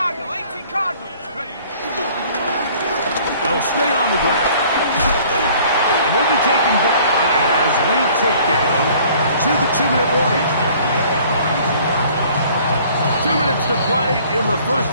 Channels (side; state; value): both; inverted; correlation -0.54